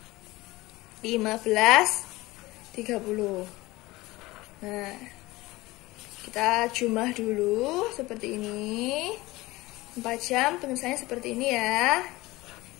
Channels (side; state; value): right; quieter; 19.8 dB